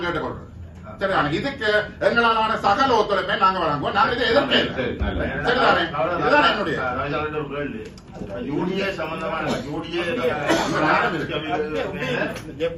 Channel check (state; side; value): identical; both; correlation 1.00